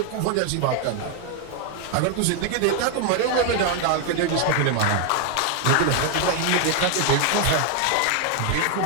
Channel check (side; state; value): both; different; correlation 0.01